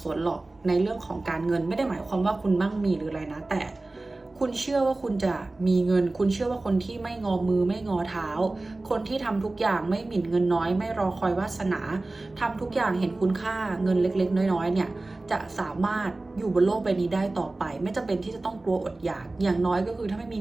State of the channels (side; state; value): left; quieter; 3.0 dB